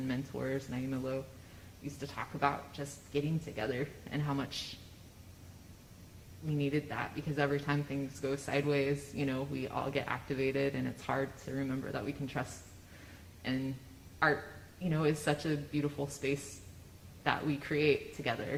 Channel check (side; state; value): both; identical; correlation 1.00